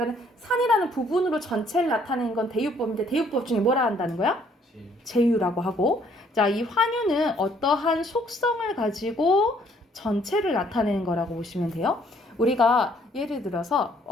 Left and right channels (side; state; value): both; normal; correlation 0.64